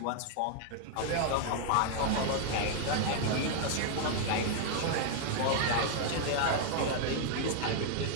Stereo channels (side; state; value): both; different; correlation 0.00